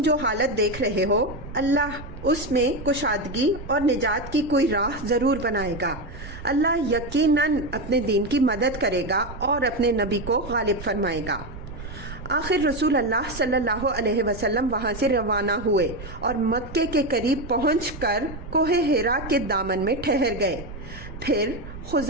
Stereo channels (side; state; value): right; noise; rumble, 13 dB below the sound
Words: جو حالت دیکھ رہے ہو اللہ اس میں کشادگی اور نجات کی کوئی راہ ضرور بنائے گا۔ اللہ یقیناً اپنے دین کی مدد کرے گا اور اپنے نبی کو غالب فرمائے گا۔ آخر رسول اللہ صلی اللہ علیہ وسلم وہاں سے روانہ ہوئے اور مکے کے قریب پہنچ کر کوہ حرا کے دامن میں ٹھہر گئے۔ پھر